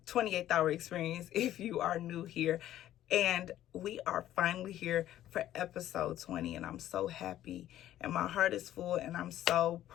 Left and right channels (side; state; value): right; quieter; 12.8 dB